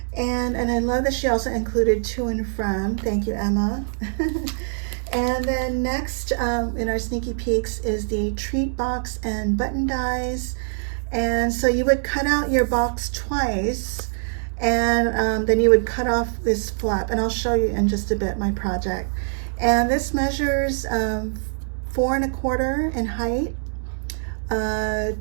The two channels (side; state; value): left; silent; digital silence